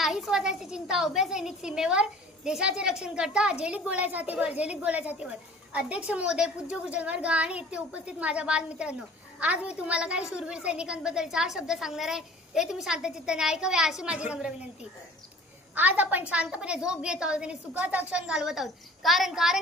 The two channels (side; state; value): both; normal; correlation 0.47